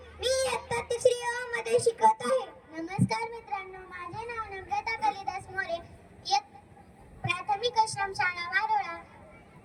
मी इयत्ता 3री अ मध्ये शिकत आहे. नमस्कार मित्रांनो, माझे नाव नम्रता कालिदास मोरे, प्राथमिक आश्रम शाळा वारुळा.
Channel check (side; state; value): both; identical; correlation 1.00